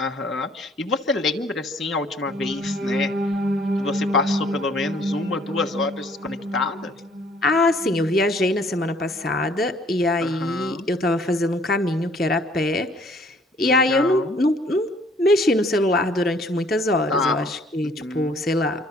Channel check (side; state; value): both; normal; correlation 0.59